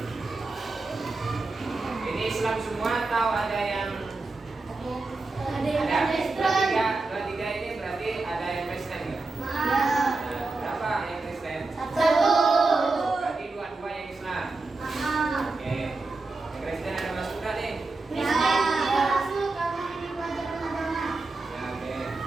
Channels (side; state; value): left; quieter; 3.5 dB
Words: Ini Islam semua atau ada yang ada? Dua tiga ini berarti ada yang Kristen ya? Nah, berapa yang Kristen? Satu. Berarti dua yang Islam. Oke. Yang Kristen ada masuk nggak nih? Ya.